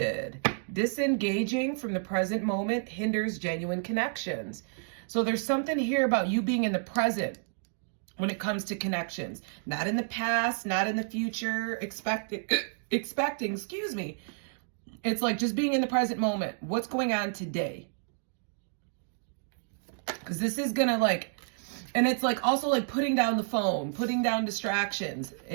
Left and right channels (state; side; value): silent; left; digital silence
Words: Disengaging from the present moment hinders genuine connections. So there's something here about you being in the present when it comes to connections. Not in the past, not in the future, expecting, excuse me. It's like just being in the present moment. What's going on today? Because this is going to like, and it's like also like putting down the phone, putting down distractions,